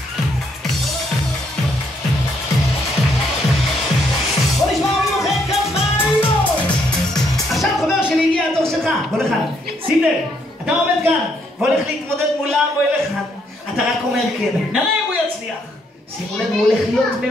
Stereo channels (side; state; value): both; normal; correlation 0.72